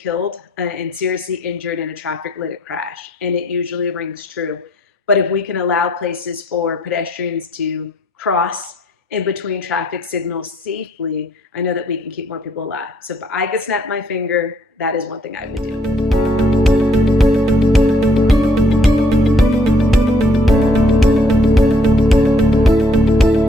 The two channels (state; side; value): normal; both; correlation 0.65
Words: and seriously injured in a traffic-related crash, and it usually rings true. But if we can allow places for pedestrians to cross in between traffic signals safely, I know that we can keep more people alive. So if I could snap my finger, that is one thing I would do.